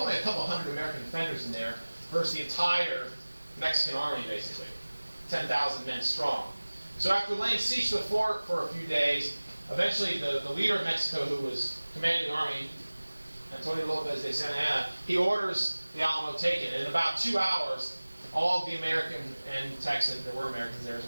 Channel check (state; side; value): inverted; both; correlation -1.00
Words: a couple hundred American defenders in there versus the entire Mexican army, basically, 10,000 men strong. So after laying siege to the fort for a few days, eventually the leader of Mexico, who was commanding the army, Antonio Lopez de Santa Anna, he orders the Alamo taken. And in about 2 hours, all of the American and Texan, there were Americans there as